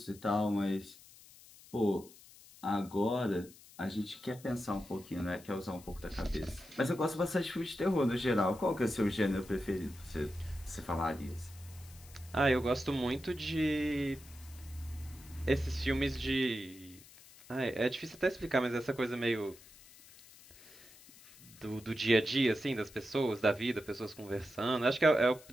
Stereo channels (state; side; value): noise; left; hiss, 21 dB below the sound